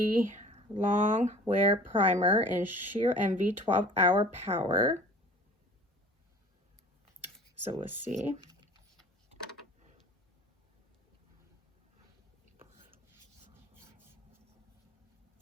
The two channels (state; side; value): normal; both; correlation 0.45